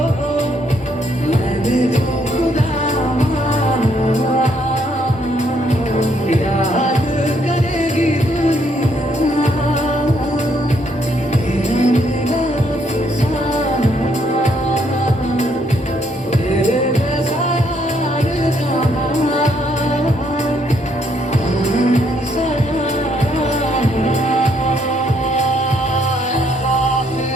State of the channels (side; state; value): both; normal; correlation 0.71